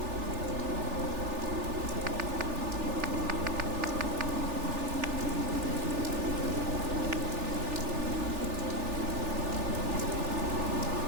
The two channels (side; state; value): left; late; 3.4 ms